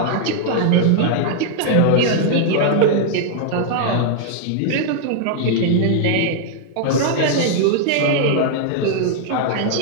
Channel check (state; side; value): different; both; correlation 0.00